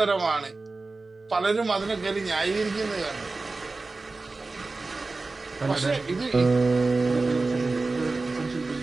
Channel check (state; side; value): quieter; left; 3.6 dB